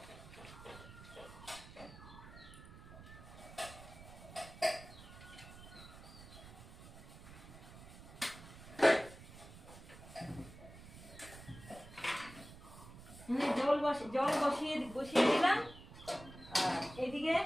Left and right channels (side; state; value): right; noise; rumble, 16 dB below the sound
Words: জল বসিয়ে দিলাম। আর এদিকে